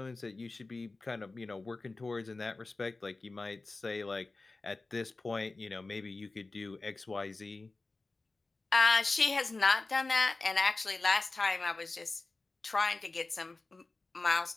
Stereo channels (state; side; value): quieter; right; 3.4 dB